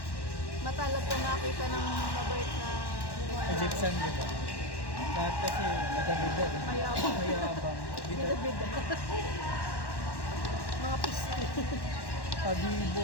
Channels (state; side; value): late; right; 1.1 ms